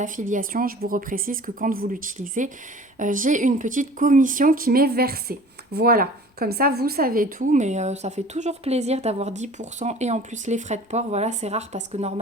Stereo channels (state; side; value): normal; both; correlation 0.45